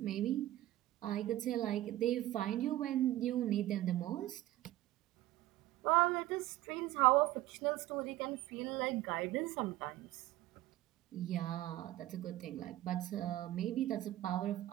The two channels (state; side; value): quieter; left; 15.4 dB